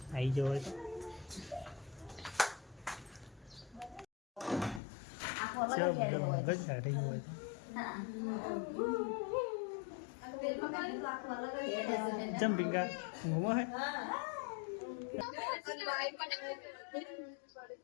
આવી જાવ હોય તો. જમ્પિંગ ઘૂમો હે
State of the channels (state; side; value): drops out; right; at 4.8 s